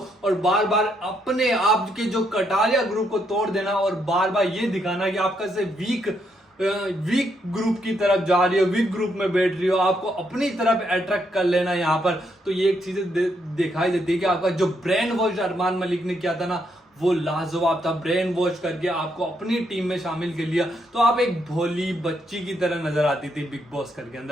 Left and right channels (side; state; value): both; normal; correlation 0.76